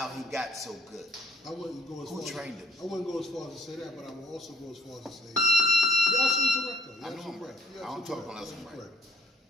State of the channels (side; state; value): both; normal; correlation 0.62